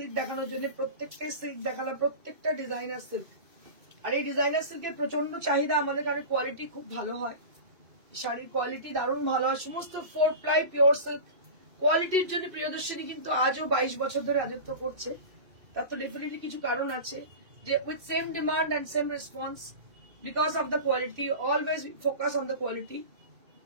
দেখানোর জন্য প্রত্যেকটা সিল্ক দেখালাম প্রত্যেকটা ডিজাইনার সিল্ক আর এই ডিজাইনার সিল্কের প্রচন্ড চাহিদা আমাদের কারণে কোয়ালিটি খুব ভালো হয় শাড়ির কোয়ালিটি দারুণ ভালো হয় সমস্ত 4 প্লাই পিওর সিল্ক কোয়ালিটির জন্য প্রিয়দর্শিনী কিন্তু আজও 22 বছর ধরে রাজত্ব করছে তার তো ডেফিনেটলি কিছু কারণ আছে যে with same demand and same response because of the quality always we focus on the quality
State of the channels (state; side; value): late; left; 2.6 ms